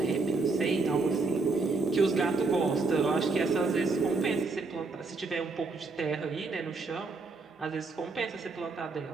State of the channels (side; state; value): left; quieter; 3.8 dB